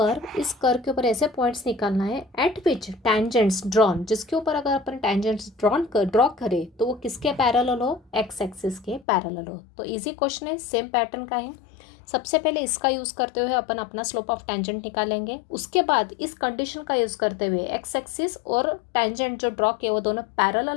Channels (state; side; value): drops out; right; at 9.1 s